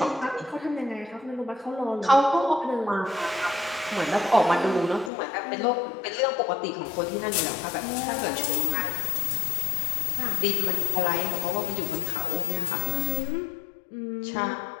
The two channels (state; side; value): drops out; right; at 5.1 s